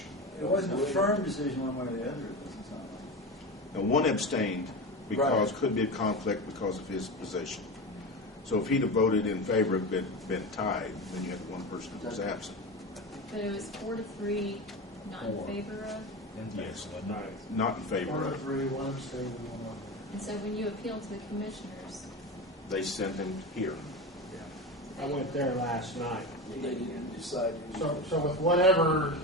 It wasn't a firm decision one way or the other, it doesn't sound like. Now, one abstained because Right. could be a conflict because of his position. So if he'd have voted in favor, been tied, then you had one person that was absent. But it was 4-3, not in 4. favor of? Yes. Right. Not in favor 1 to of. 3, 1 abstained, and 1 not. And so when you appealed to the commissioners, They sent him here. I went there last night. They didn't decide. So with whatever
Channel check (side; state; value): both; normal; correlation 0.23